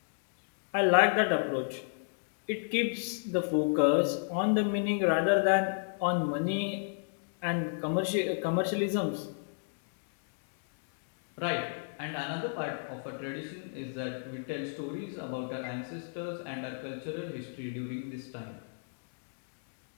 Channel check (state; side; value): silent; right; digital silence